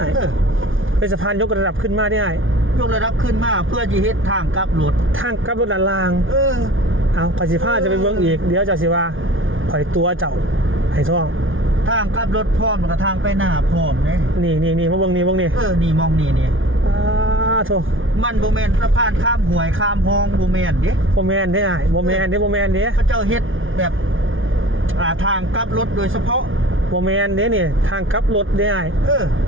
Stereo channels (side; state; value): left; late; 0.58 ms